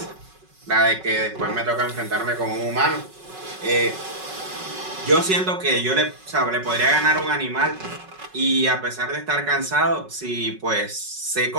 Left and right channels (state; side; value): late; left; 5.4 ms